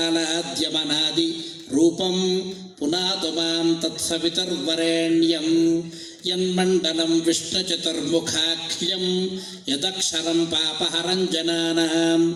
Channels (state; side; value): identical; both; correlation 1.00